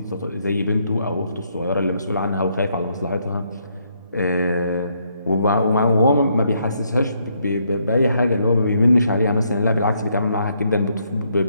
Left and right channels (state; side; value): inverted; both; correlation -0.73